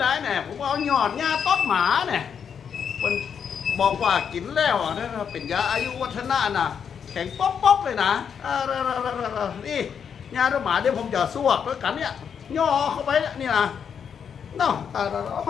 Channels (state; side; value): quieter; right; 7.3 dB